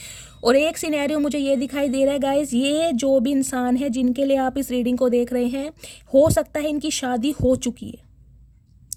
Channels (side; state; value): both; identical; correlation 1.00